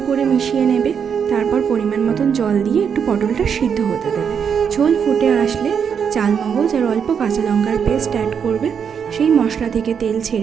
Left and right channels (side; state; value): left; quieter; 7.2 dB